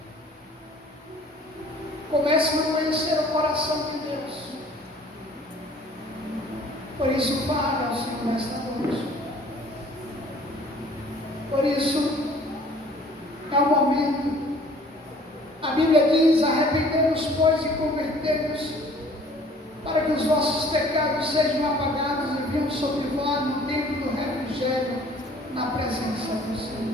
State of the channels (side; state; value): both; normal; correlation 0.53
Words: começam a conhecer o coração de Deus. Por isso, fale ao Senhor esta noite. Por isso, é o momento. A Bíblia diz: arrependemos, pois, e convertemos, para que os vossos pecados sejam apagados e venham sobre vós no tempo do refrigério, na presença do Senhor.